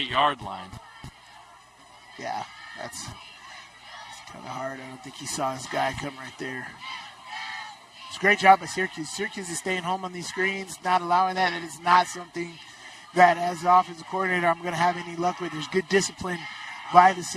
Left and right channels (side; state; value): both; identical; correlation 1.00